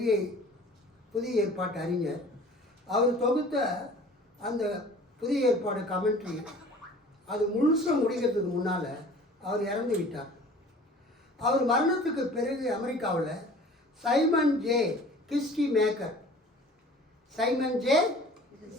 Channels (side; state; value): both; normal; correlation 0.46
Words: புதிய ஏற்பாட்டு அறிஞர். அவர் தொகுத்த அந்த புதிய ஏற்பாடு கமெண்ட்ரி அது முழுசாக முடிக்கிறதுக்கு முன்னால் அவர் இறந்து விட்டார். அவர் மரணத்துக்கு பிறகு அமெரிக்காவில் Simon J Kistemaker, Simon J